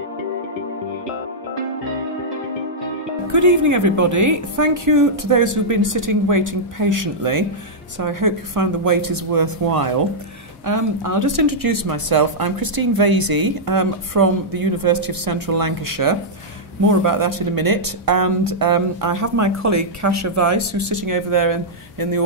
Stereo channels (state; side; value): normal; both; correlation -0.09